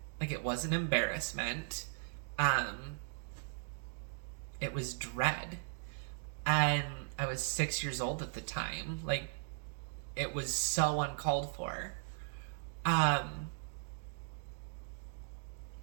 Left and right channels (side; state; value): left; silent; digital silence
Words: Like, it wasn't embarrassment. It was dread. And I was 6 years old at the time. Like, it was so uncalled for.